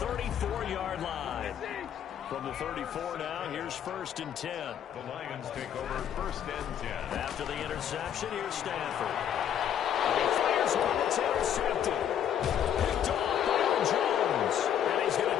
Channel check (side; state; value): right; quieter; 9.6 dB